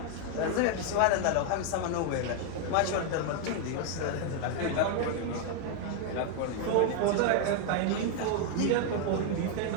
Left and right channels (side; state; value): both; different; correlation 0.00